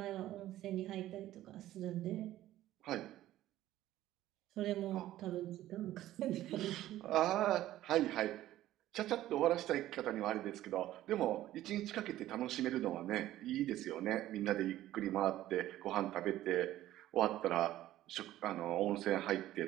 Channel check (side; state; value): left; quieter; 14.1 dB